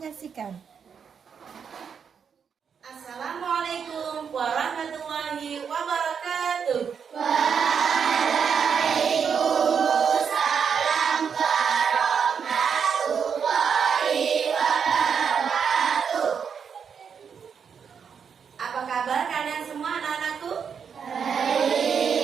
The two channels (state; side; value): quieter; left; 6.9 dB